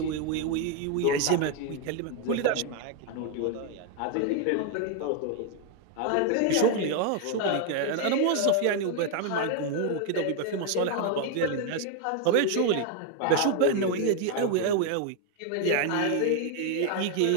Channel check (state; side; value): different; both; correlation 0.01